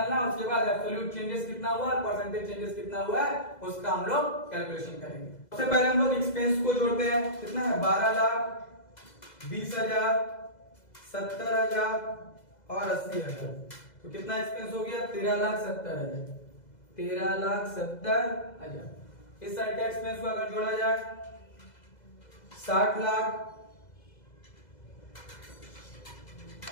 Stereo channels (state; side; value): late; right; 2.0 ms